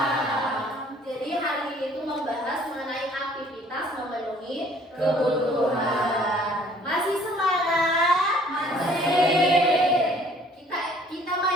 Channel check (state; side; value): normal; both; correlation 0.57